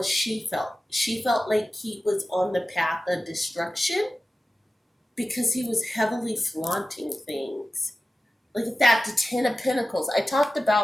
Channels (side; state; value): both; normal; correlation 0.94